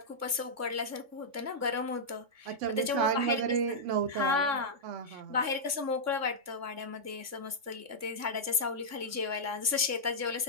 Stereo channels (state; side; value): late; left; 3.5 ms